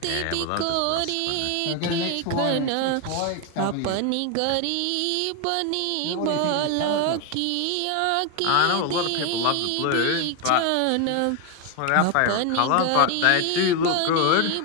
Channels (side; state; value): both; different; correlation 0.01